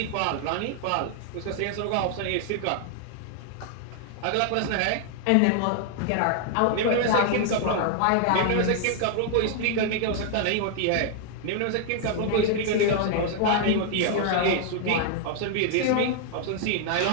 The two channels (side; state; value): both; different; correlation 0.00